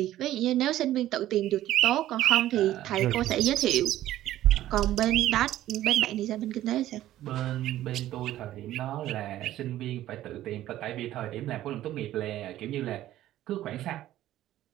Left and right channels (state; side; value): quieter; left; 13.8 dB